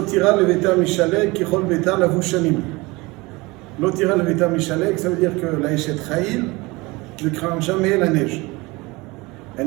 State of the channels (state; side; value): quieter; left; 23.4 dB